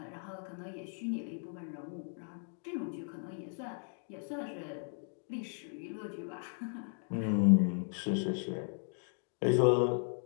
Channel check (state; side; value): silent; right; 54 dB below the other